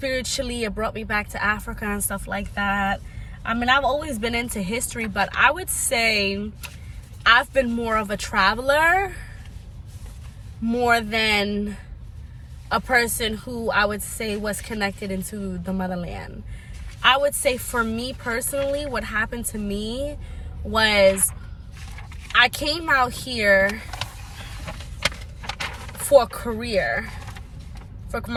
it brought me back to Africa and stuff like that. I mean, I've always been into history, but I would say I've been more of a traveler more than a person who I would say was connected into the motherland. I would say for me personally, what happened to me was I came out here for a career, for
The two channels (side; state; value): both; identical; correlation 1.00